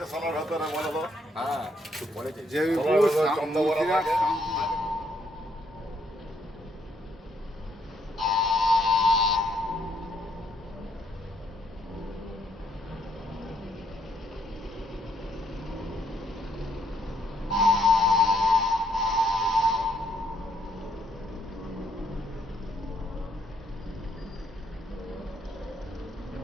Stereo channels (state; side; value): normal; both; correlation 0.71